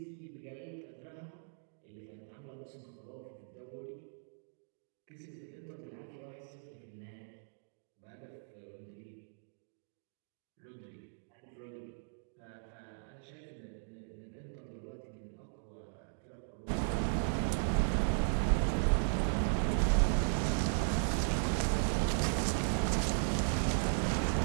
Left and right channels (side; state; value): left; silent; digital silence